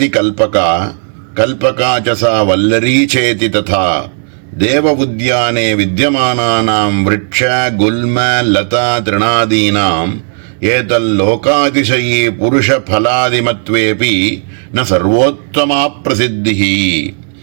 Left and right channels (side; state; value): left; silent; digital silence